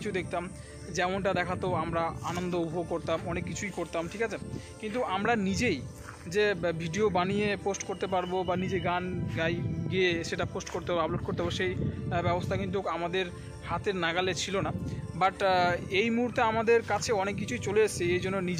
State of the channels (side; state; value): both; identical; correlation 1.00